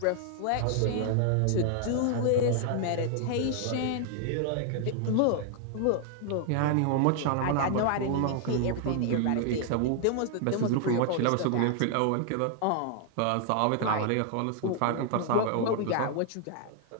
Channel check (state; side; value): different; both; correlation 0.00